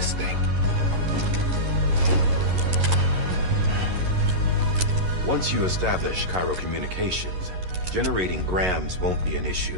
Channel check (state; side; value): late; left; 11 ms